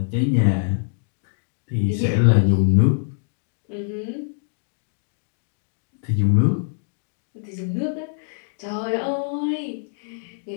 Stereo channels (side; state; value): right; silent; digital silence